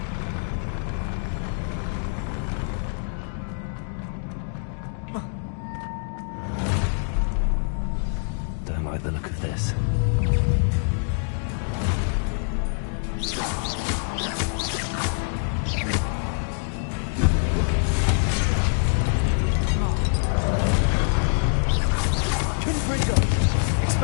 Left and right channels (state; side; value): silent; right; 62 dB below the other